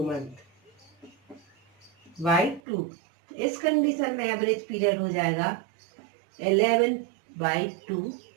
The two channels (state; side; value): drops out; left; at 2.6 s